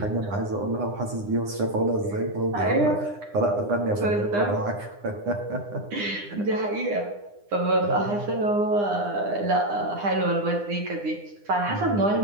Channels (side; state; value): left; late; 9.8 ms